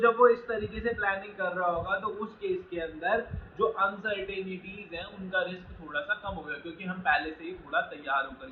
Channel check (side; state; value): both; identical; correlation 1.00